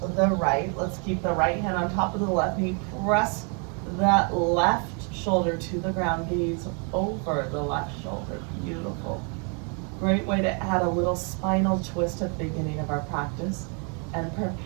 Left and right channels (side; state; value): left; quieter; 37.5 dB